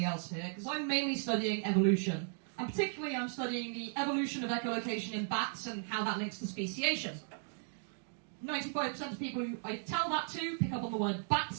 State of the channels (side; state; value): left; silent; 54 dB below the other